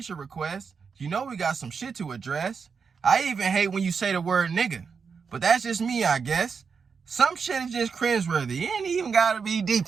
request. You know we got some shit to address. I even hate when you say the word nigga. But that's just me, I guess. Some shit is just cringeworthy. It ain't even gotta be deep,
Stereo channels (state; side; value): quieter; left; 5.7 dB